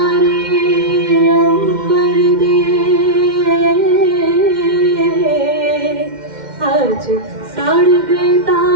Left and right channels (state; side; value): late; left; 2.1 ms